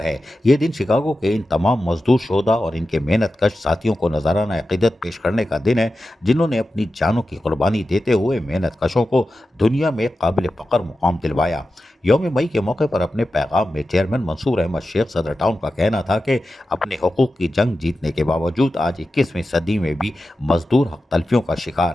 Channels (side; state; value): both; normal; correlation 0.92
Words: है। ये दिन शिकागो के इन तमाम मजदूर शोधा और इनके मेहनत कश साथियों को नजराना अक़ीदत पेश करने का दिन है जिन्होंने अपनी जानों की कुर्बानी देते हुए मेहनत कशों को दुनिया में काबिल फ़ख्र मुकाम दिलवाया। यौम मई के मौके पर अपने पैगाम में चेयरमैन मंसूर अहमद शेख सदर टाउन का कहना था कि अपने हकूक़ की जंग जीतने के बावजूद आज 21वीं सदी में भी मजदूर हक तलफियों का